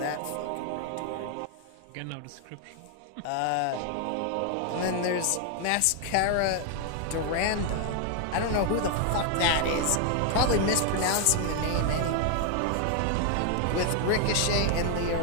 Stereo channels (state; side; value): different; both; correlation 0.00